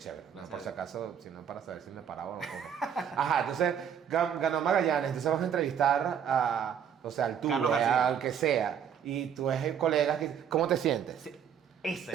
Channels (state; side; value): quieter; left; 8.3 dB